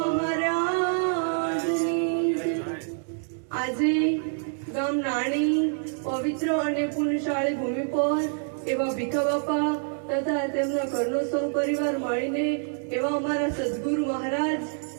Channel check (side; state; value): left; silent; digital silence